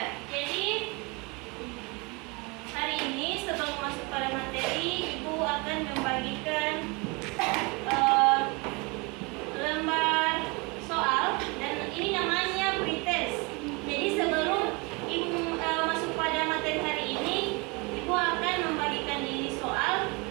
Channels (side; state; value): left; quieter; 28.2 dB